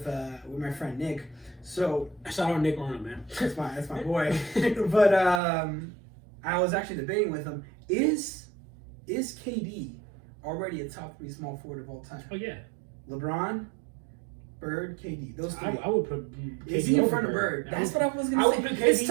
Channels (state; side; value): drops out; left; at 5.4 s